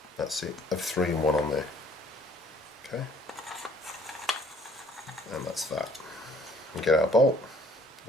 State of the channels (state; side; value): normal; both; correlation 0.59